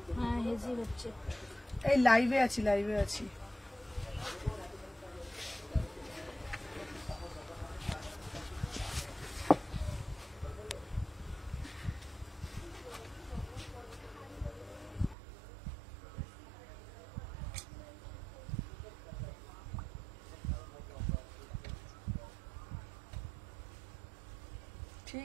হ্যাঁ হেজি হচ্ছে। এই লাইভে আছি, লাইভে আছি।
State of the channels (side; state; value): left; drops out; at 15.2 s